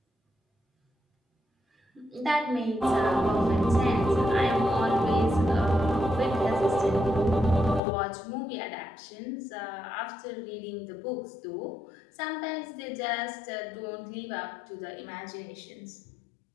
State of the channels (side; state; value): right; drops out; at 7.8 s